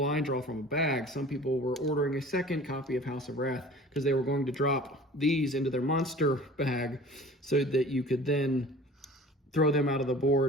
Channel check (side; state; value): both; normal; correlation 0.44